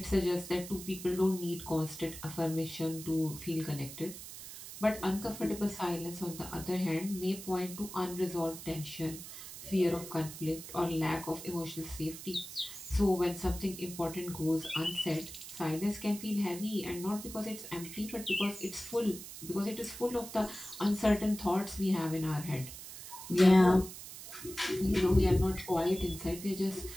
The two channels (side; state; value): right; noise; hiss, 12 dB below the sound